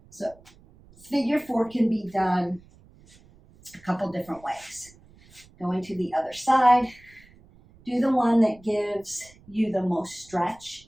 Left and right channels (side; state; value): right; noise; rumble, 26 dB below the sound